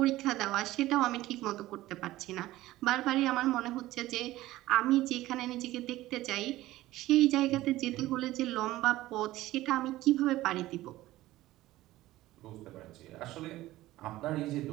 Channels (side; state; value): left; quieter; 16.5 dB